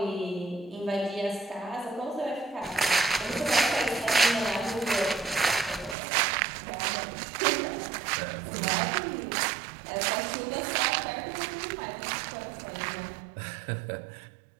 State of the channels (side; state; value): left; drops out; at 6.0 s